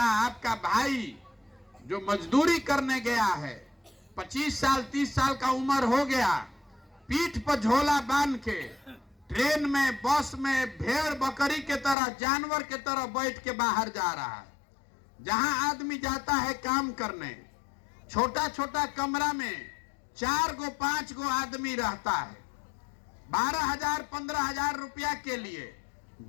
आपका भाई जो मजदूरी करने गया है, 25 साल 30 साल का उम्र हो गया, पीठ पर झोला बांध के ट्रेन में, बस में भेड़ बकरी के तरह, जानवर के तरह बैठ के बाहर जा रहा है। जहां आदमी जाता है काम करने, छोटा छोटा कमरा में 4 गो 5 गो आदमी रहता है। 12,000 15,000 रुपया के लिए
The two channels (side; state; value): right; drops out; at 12.0 s